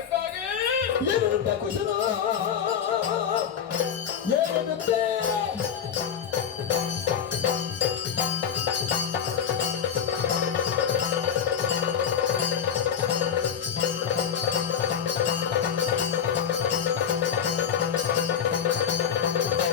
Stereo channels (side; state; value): right; quieter; 8.1 dB